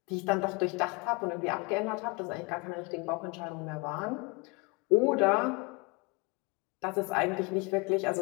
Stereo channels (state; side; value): quieter; right; 28.6 dB